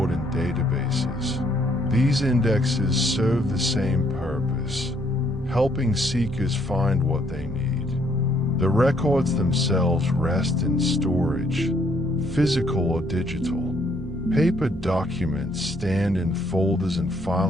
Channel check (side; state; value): both; normal; correlation 0.68